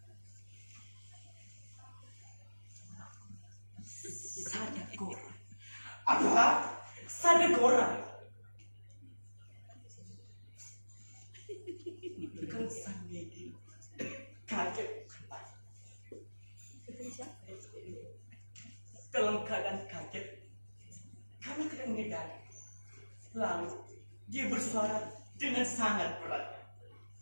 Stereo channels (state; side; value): inverted; both; correlation -1.00